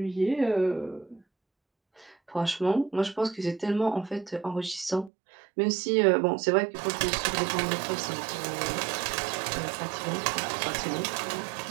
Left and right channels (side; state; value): left; drops out; at 5.1 s